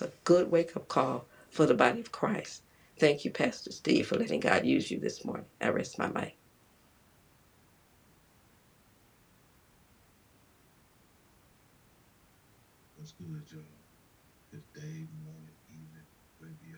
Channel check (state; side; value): identical; both; correlation 1.00